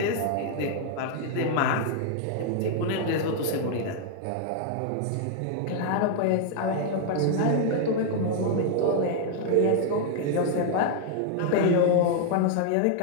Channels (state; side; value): different; both; correlation 0.00